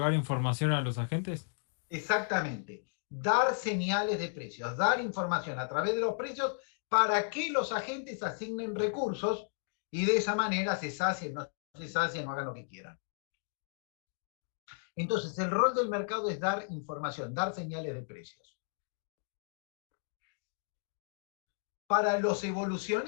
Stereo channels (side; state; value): right; silent; digital silence